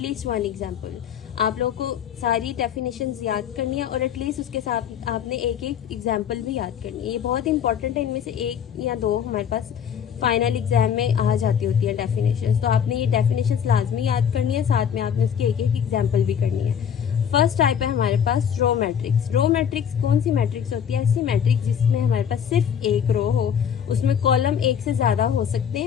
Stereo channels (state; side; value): quieter; right; 8.3 dB